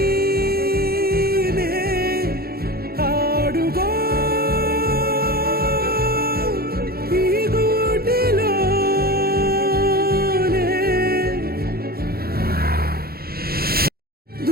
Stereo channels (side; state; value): left; late; 0.44 ms